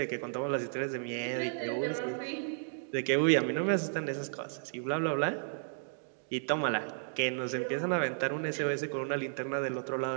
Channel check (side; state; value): left; silent; digital silence